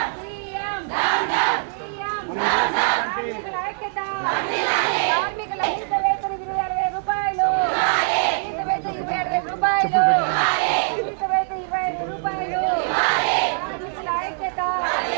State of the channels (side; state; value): left; silent; digital silence